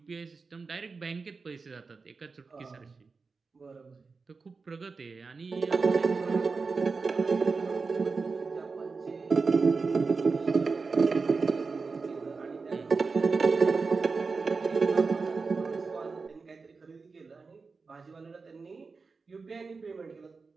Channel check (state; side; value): quieter; left; 4.5 dB